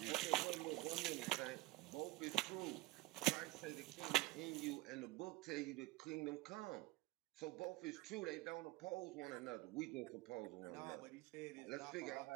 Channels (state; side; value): quieter; left; 19.8 dB